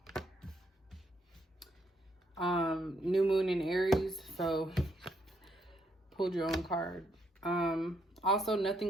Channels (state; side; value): normal; both; correlation 0.75